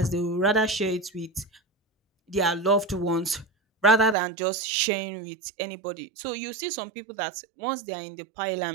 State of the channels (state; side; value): drops out; left; at 4.2 s